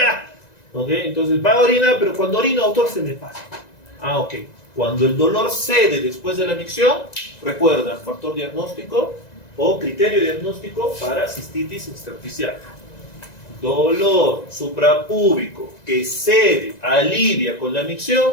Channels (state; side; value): late; right; 1.9 ms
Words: ¿ok? Entonces va a orinar, pero cuando orino, doctor, se me pasa. Ah, ok. Cuando el dolor cede después de la micción, recuerda, factor diagnóstico o criterio diagnóstico para cistitis intersticial. Dolor suprapúbico que cede, alivia con la